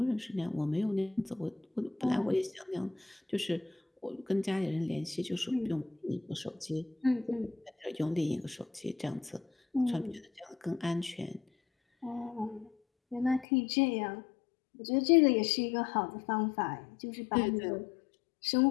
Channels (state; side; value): drops out; right; at 13.5 s